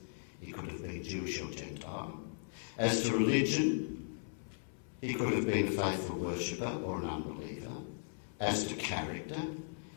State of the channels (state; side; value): silent; right; 53 dB below the other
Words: he could have been Jewish or Gentile. As to religion, he could have been a faithful worshipper or an unbeliever. As to character,